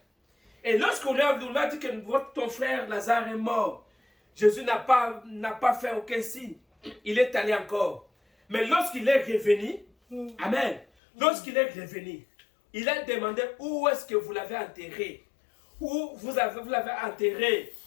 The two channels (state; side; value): drops out; right; at 10.9 s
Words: Et lorsqu'on a dit que ton frère Lazare est mort, Jésus n'a pas fait aucun signe. Il est allé encore. Mais lorsqu'il est revenu, amen, lorsqu'il est revenu, il a demandé où est-ce que vous l'avez enterré. Où vous l'avez enterré.